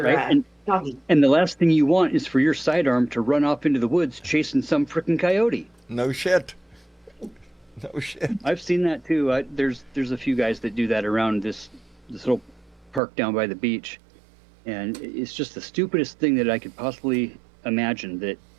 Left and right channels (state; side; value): drops out; left; at 13.0 s